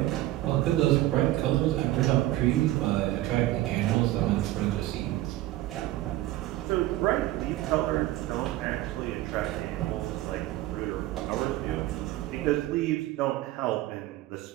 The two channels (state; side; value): quieter; left; 16.1 dB